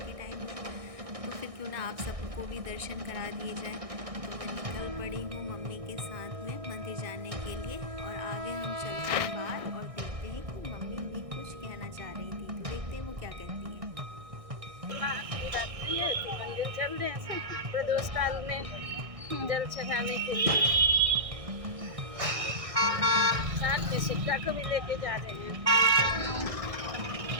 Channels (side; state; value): left; late; 1.6 ms